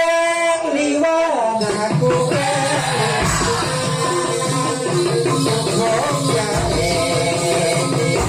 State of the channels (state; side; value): identical; both; correlation 1.00